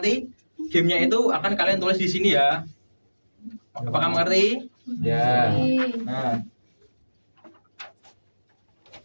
gamenya itu akan kalian tulis di sini ya. Apakah mengerti? Ya.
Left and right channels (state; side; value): inverted; both; correlation -1.00